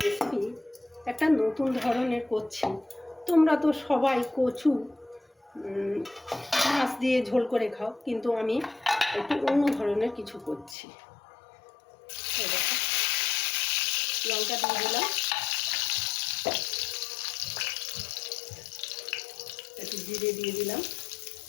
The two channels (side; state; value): right; drops out; at 10.8 s